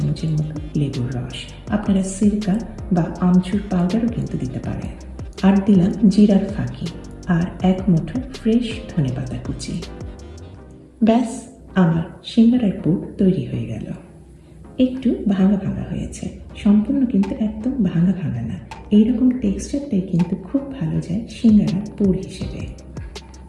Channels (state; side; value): identical; both; correlation 1.00